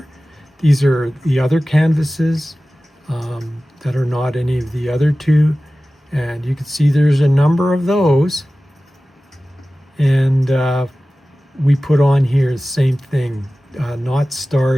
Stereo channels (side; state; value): both; normal; correlation 0.96